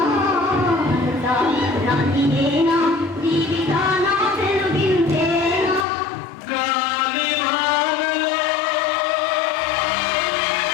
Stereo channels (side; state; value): right; drops out; at 5.9 s